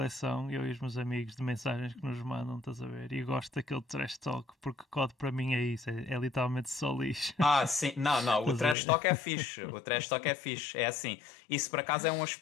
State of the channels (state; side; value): drops out; right; at 8.8 s